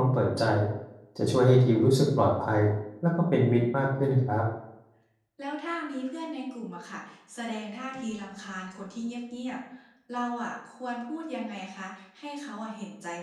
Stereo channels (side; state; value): both; identical; correlation 1.00